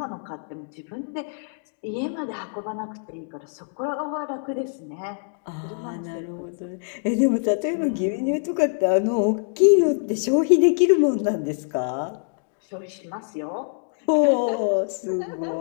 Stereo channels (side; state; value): right; silent; digital silence